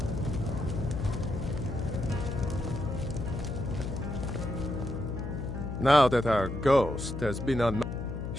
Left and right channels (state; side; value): noise; left; hum, 5 dB below the sound